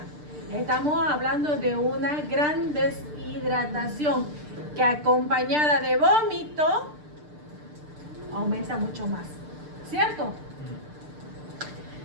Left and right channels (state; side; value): late; left; 6.7 ms